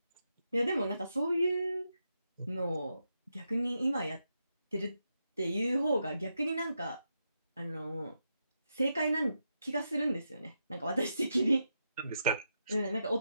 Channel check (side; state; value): both; inverted; correlation -0.84